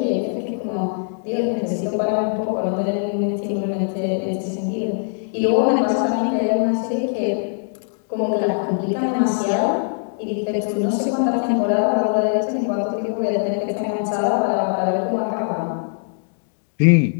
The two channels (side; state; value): right; silent; digital silence